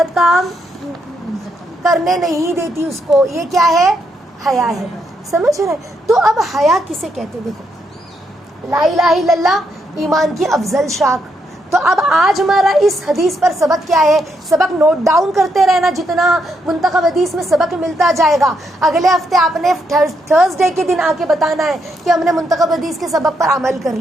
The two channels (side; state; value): both; normal; correlation 0.78